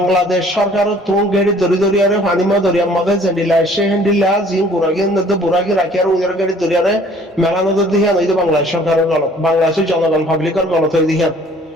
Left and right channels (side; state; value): both; normal; correlation 0.55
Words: সরকার তো গাড়ি ধরি আরে ফানিমা দরিয়া মধ্যে জেন্ডিলা এসে হেন্ডিলা জিন বুরাগি রাখি আর ওদের গাড়ি ধরি আরে মেলা নজর দিয়ে নই বাংলাদেশ সরকারের গলত বাংলাদেশের জনগণ পাবলিকের গলত হয়ে দিয়ে